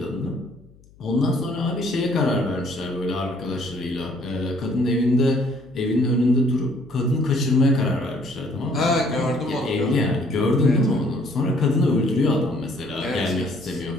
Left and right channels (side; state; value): left; noise; hum, 26 dB below the sound